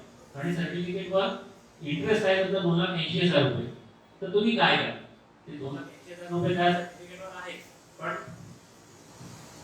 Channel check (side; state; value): both; identical; correlation 1.00